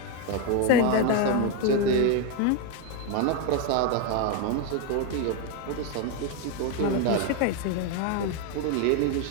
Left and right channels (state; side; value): different; both; correlation 0.02